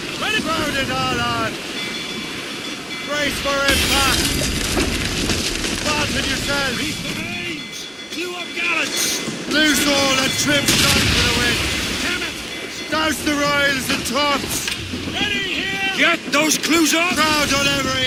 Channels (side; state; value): both; identical; correlation 1.00